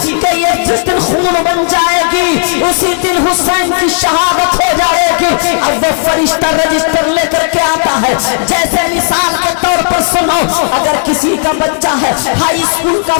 कि ये जिस दिन खून बन जाएगी उसी दिन हुसैन की शहादत हो जाएगी। अब वो फरिश्ता रजिस्टर लेकर के आता है। जैसे मिसाल के तौर पर सुनो, अगर किसी का बच्चा है हाई स्कूल का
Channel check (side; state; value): right; silent; digital silence